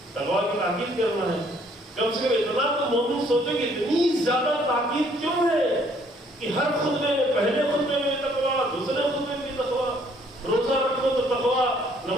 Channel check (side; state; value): both; normal; correlation 0.63